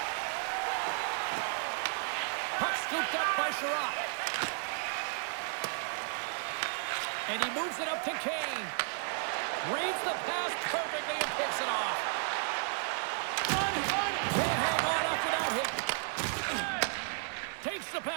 Puck scooped up by Sherratt. And he moves it up to Kane. Reads the pass perfectly and picks it off. Can't hang on after that hit. Takes the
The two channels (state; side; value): silent; left; 55 dB below the other